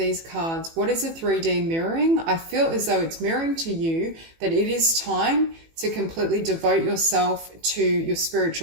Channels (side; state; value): left; late; 18 ms